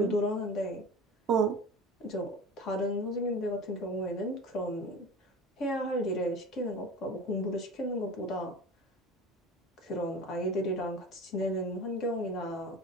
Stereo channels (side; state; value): both; normal; correlation 0.36